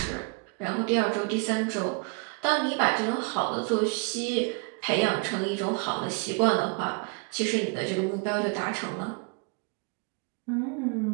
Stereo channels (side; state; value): left; quieter; 33.8 dB